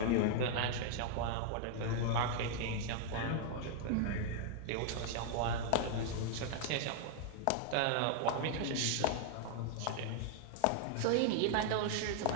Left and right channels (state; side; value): different; both; correlation 0.00